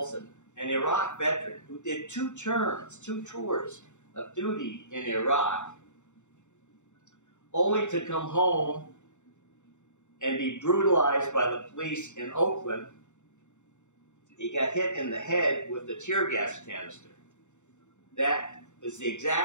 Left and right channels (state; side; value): late; right; 0.84 ms